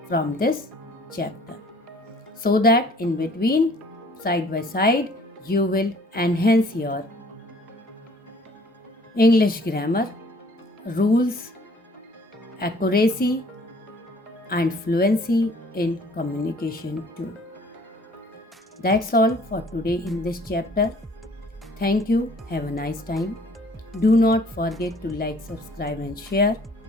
from this chapter, so that in between, side by side, you will enhance your English grammar, rules, accuracy and fluency in communication too. That's all for today in this chapter. Thank you. Have a nice time. Do not forget to like, subscribe and share.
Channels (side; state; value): both; normal; correlation 0.55